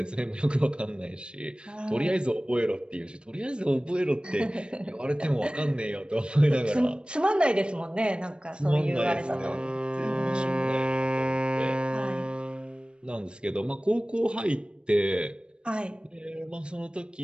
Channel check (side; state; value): left; late; 0.055 ms